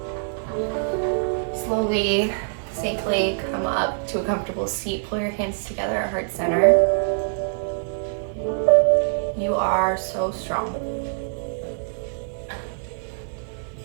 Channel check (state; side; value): silent; left; 57 dB below the other